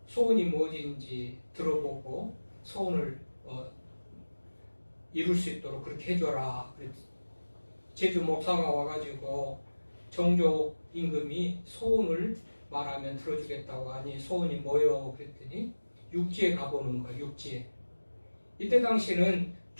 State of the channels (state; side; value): inverted; both; correlation -1.00